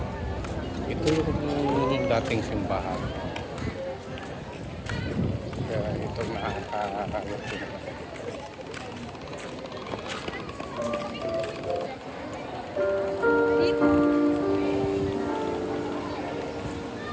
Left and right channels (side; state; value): both; identical; correlation 1.00